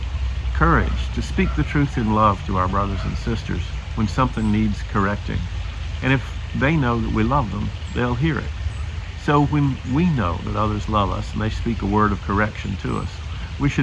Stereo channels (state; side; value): identical; both; correlation 1.00